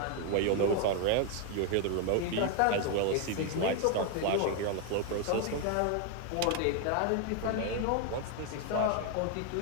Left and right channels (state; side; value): different; both; correlation 0.01